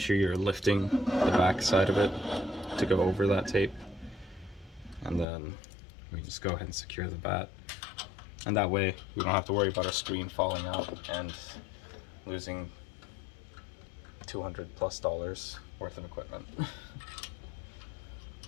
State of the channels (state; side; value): drops out; right; at 5.2 s